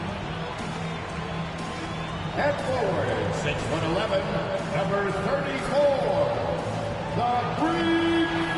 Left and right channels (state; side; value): identical; both; correlation 1.00